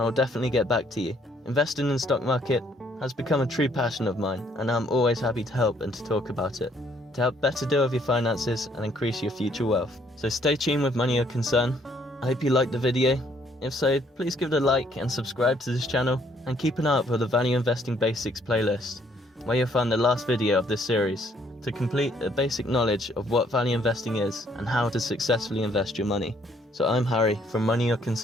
I'll definitely get back to you. Investing in the stock market has become a true passion of mine, and I'm always happy to help and to talk about it, to help better deal with your finances and increase your future wealth. So stay tuned with Money Your Concern. I hope you liked the video. If so, please give it a like and subscribe to this channel, and keep an eye out for the Value Investing Basics playlist, where you'll find the last video of this series, to complete a basic knowledge of what value investing is and how to successfully invest your money. So I'm Harry from Money Your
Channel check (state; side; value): normal; both; correlation 0.66